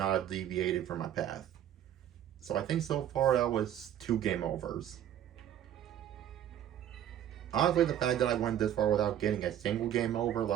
have deviated from my path. So I think so far that was 2 game overs. Honestly, the fact that I went this far without getting a single game over,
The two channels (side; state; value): left; quieter; 10.8 dB